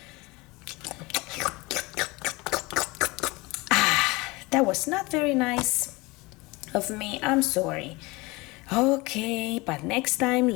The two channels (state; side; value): quieter; right; 23.7 dB